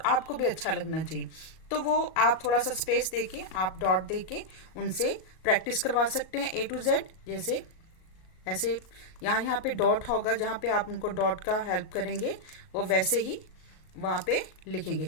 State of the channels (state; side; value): late; right; 37 ms